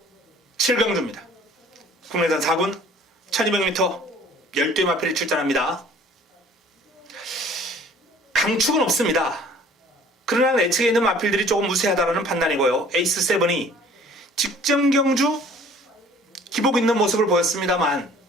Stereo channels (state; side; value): normal; both; correlation 0.52